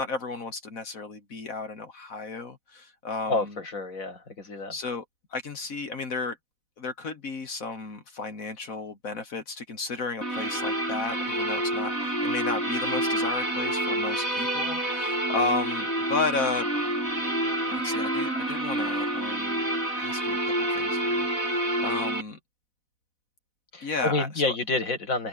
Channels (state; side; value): late; right; 4.0 ms